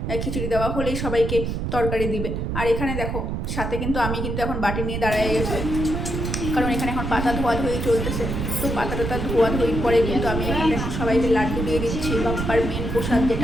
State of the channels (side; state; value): right; noise; rumble, 2 dB below the sound